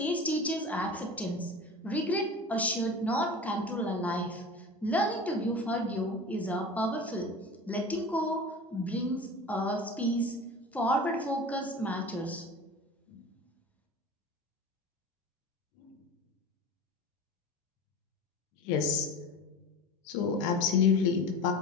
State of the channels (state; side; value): normal; both; correlation 0.35